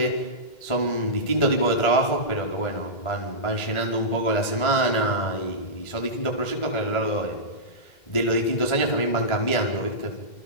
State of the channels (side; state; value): right; late; 2.1 ms